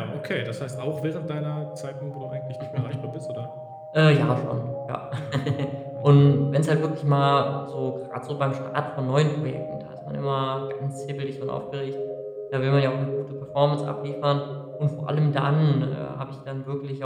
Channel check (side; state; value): both; identical; correlation 1.00